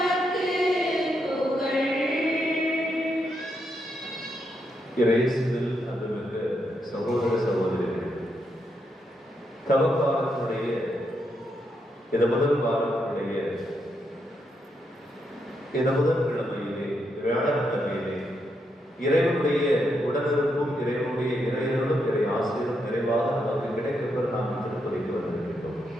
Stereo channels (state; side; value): normal; both; correlation 0.80